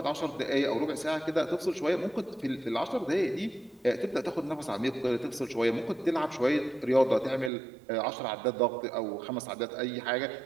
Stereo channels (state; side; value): drops out; left; at 7.5 s